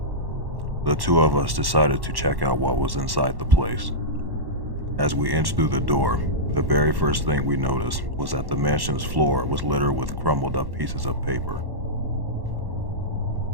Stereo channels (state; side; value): late; left; 1.1 ms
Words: The two of us decided to check out what was inside the place. As we inched through the door, the very first thing we noticed was that the mansion's floor was littered with crumbled up pieces of paper.